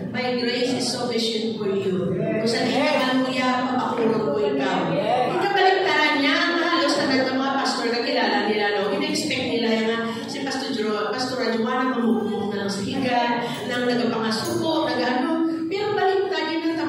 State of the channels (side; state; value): both; identical; correlation 1.00